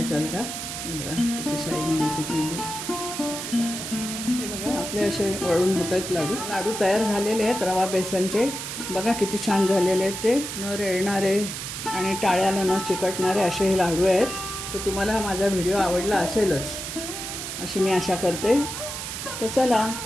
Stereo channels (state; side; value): noise; right; hiss, 6 dB below the sound